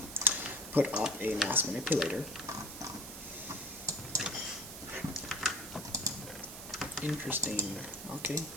put up a mass manipulator. Interesting. Okay,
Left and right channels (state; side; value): noise; right; hiss, 11 dB below the sound